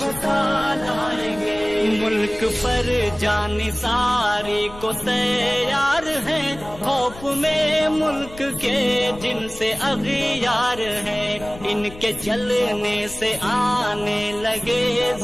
लाएंगे। मुल्क पर जानी सारी को तैयार है, खौफ में मुल्क के जिनसे अगियार है। इनके जलने से आने लगे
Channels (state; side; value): noise; left; rumble, 17 dB below the sound